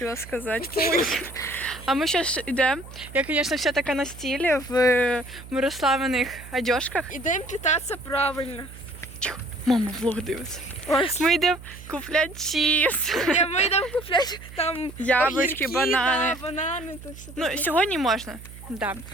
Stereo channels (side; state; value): right; noise; hum, 16 dB below the sound